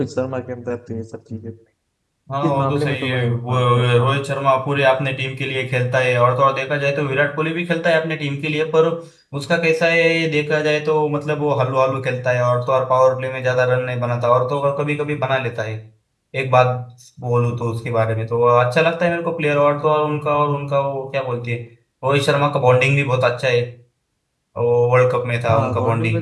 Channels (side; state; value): both; identical; correlation 1.00